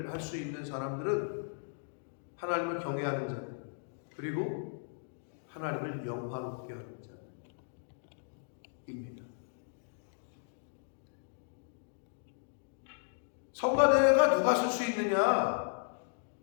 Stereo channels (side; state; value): right; silent; digital silence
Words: 할 수 있는 사람들은 하나님을 경외하는 자들 그리고 하나님을 영화롭게 하는 자입니다. 성가대가 누가 쓸 수 있느냐?